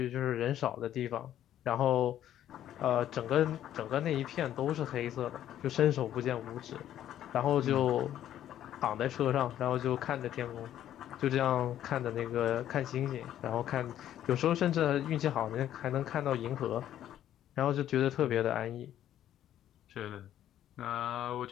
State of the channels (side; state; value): right; quieter; 11.5 dB